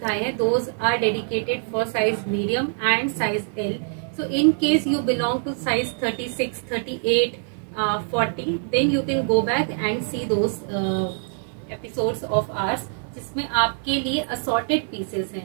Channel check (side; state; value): left; silent; 59 dB below the other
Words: हैं those are dedicated for size medium and size L. So in case you belong to size 36, 38, 40 then you can go back and see those episodes of ours जिसमें आपके लिए असॉर्टेड पीसेस हैं।